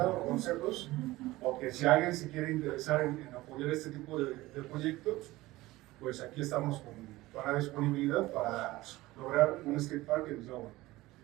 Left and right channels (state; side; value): quieter; left; 18.5 dB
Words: o consejos, o que si alguien se quiere interesar en apoyar este tipo de proyectos, pues aquí estamos con la disponibilidad para lograr un skatepark en Tláhuac.